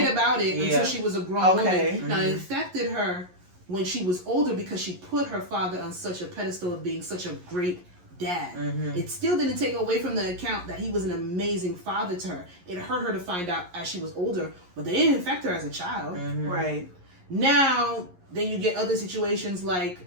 about it until she was a grown woman. Mm-hmm. Now it affected her when she was older because she put her father on such a pedestal of being such a great dad. Mm-hmm. It still didn't take away from the account that he was an amazing father to her. It hurt her to find out as she was older, but they didn't affect her as a child. Mm-hmm. Right. Now, then you get other situations like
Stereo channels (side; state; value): left; late; 11 ms